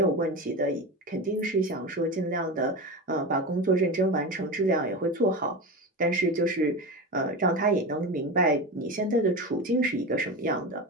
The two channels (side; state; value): both; normal; correlation 0.23